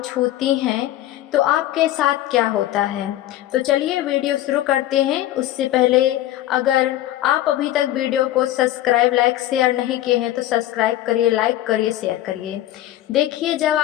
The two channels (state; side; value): quieter; right; 14.0 dB